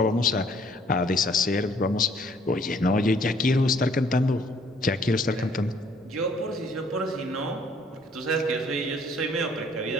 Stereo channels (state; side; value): normal; both; correlation 0.61